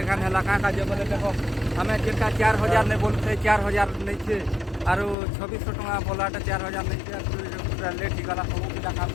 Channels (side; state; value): right; drops out; at 5.2 s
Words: खाने लगा का जो बोले देखो हमें जिनका 4000 नहीं बोलते 4000 नहीं छे और 2600 टका बोलाटा 4000 नहीं छे पूरा लेट ही गला सब का काम